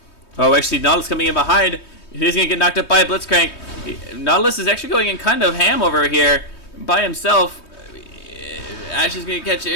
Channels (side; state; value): right; late; 3.2 ms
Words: Oh, actually, Nautilus coming in behind. He's going to get knocked up by a Blitzcrank. Nautilus is actually going in kind of ham over here by himself. Ashe is going to catch it.